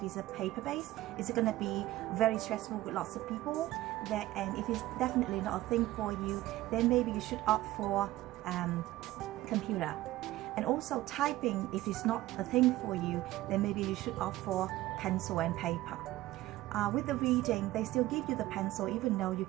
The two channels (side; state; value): left; quieter; 16.7 dB